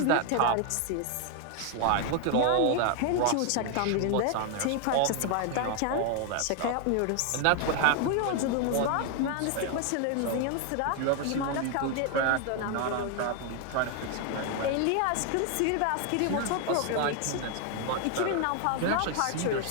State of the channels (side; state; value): both; different; correlation 0.00